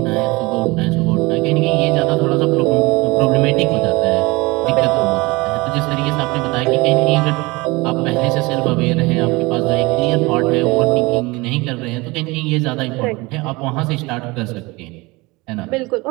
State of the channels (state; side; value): quieter; left; 23.6 dB